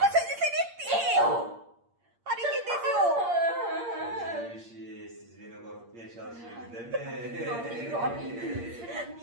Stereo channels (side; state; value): left; late; 8.6 ms